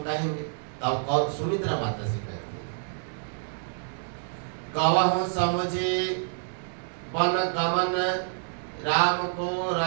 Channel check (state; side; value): silent; left; digital silence